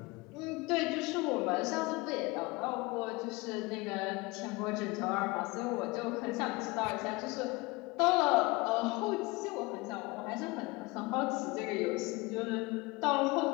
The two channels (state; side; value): quieter; right; 23.9 dB